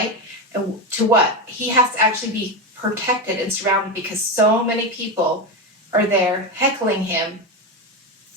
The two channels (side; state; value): both; normal; correlation 0.14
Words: And to what? He has to actually be protected and surrounded because so many people are there heckling him,